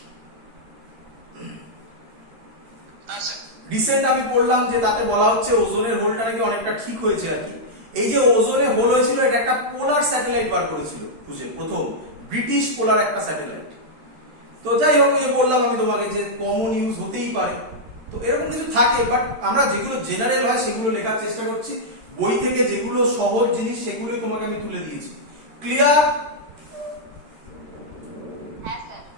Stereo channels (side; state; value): left; late; 13 ms